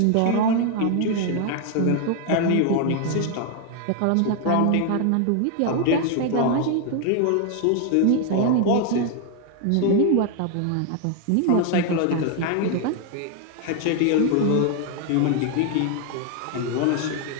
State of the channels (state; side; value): different; both; correlation 0.00